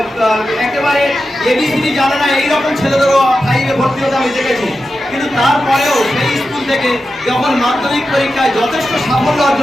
একেবারে এবিসিডি জানে না এইরকম ছেলেদেরও 5-এ ভর্তি হতে আমি দেখেছি। কিন্তু তারপরেও সেই স্কুল থেকে যখন মাধ্যমিক পরীক্ষায় যথেষ্ট সাফল্য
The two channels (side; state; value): both; normal; correlation 0.91